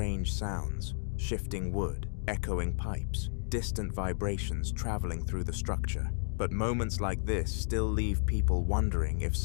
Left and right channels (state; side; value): silent; right; digital silence